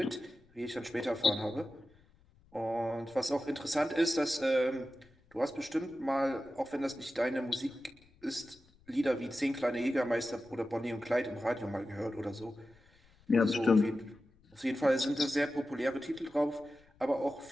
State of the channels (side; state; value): left; noise; rumble, 29 dB below the sound